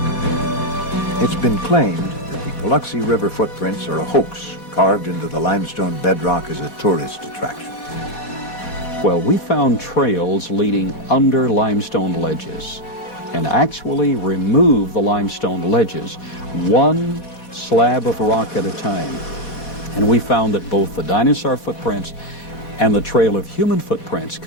It's been claimed that the Biloxi River footprints are a hoax carved into the limestone bedrock as a tourist attraction. Well, we found trails leading under limestone ledges and actually removed the limestone ledges one slab of rock at a time. And we found that both the dinosaur footprints and the trail of human footprints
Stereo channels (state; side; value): late; right; 4.1 ms